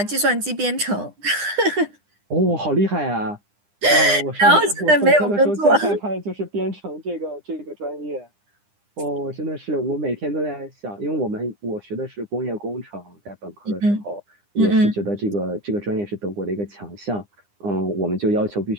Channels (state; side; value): late; left; 9.9 ms